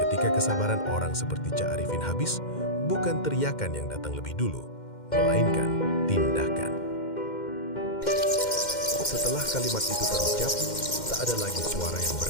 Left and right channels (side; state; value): right; late; 2.1 ms